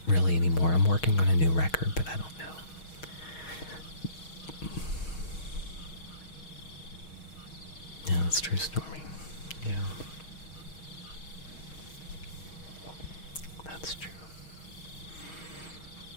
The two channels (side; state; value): right; late; 6.4 ms